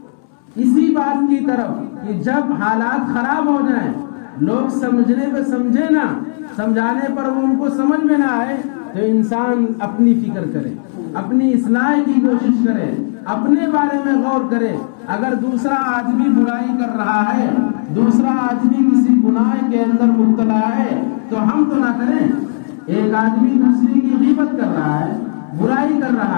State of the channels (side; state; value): right; silent; digital silence